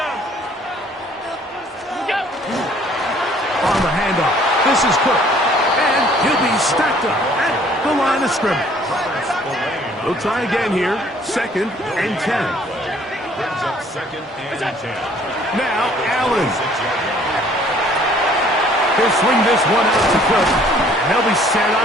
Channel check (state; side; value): normal; both; correlation 0.58